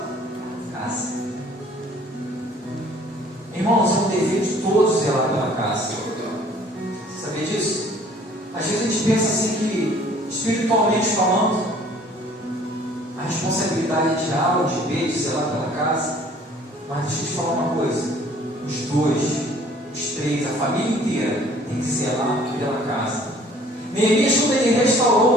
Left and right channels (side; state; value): both; normal; correlation 0.55